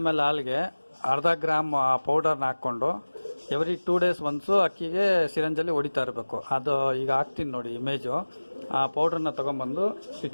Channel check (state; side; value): inverted; both; correlation -1.00